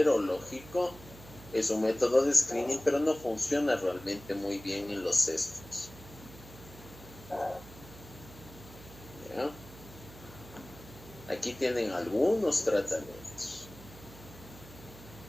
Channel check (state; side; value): noise; right; hum, 18 dB below the sound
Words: es un método de screening, pero no funciona realmente muy bien en los cestos. ¿Ya? Aquí tienen algunos tratamientos.